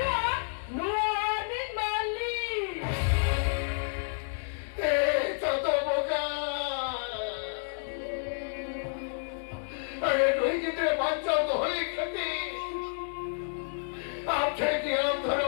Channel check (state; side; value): silent; right; digital silence